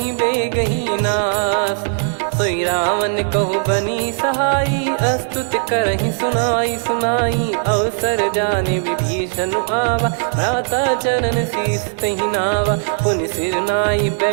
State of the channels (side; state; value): left; silent; 61 dB below the other